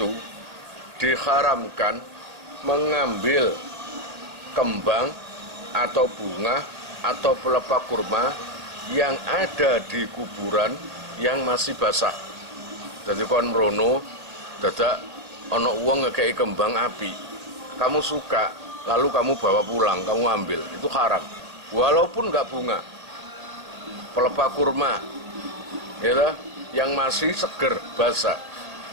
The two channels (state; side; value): late; left; 1.9 ms